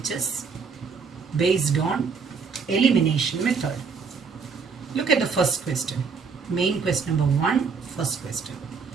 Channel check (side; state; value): left; quieter; 5.5 dB